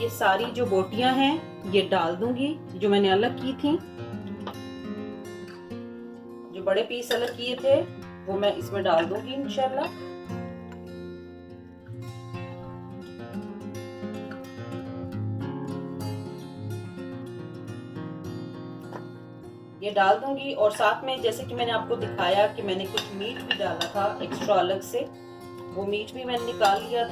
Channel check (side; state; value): both; identical; correlation 1.00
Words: सारी जो बोटियां हैं ये डाल दूंगी, जो मैंने अलग की थी, जो बड़े पीस अलग किए थे वो मैं इसमें डाल दूंगी इंशाल्लाह। ये डाल दूंगी, और साथ में जैसे कि मैंने आपको दिखाया कि मैंने कुछ मीट भी डाला था एक्स्ट्रा अलग से, वो मीट भी मैंने निकाल लिया